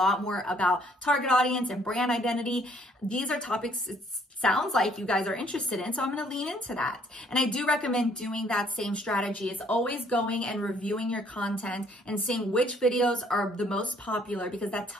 more about target audience and brand identity. These are topics it sounds like you guys are interested in, so I'm going to lean into that. And I do recommend doing that same strategy. It's always going and reviewing your content and seeing which videos are the most popular, because that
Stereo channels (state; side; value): normal; both; correlation 0.63